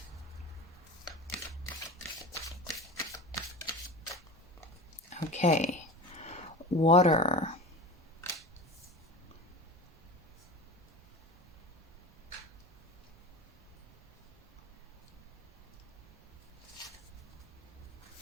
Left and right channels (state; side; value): normal; both; correlation 0.31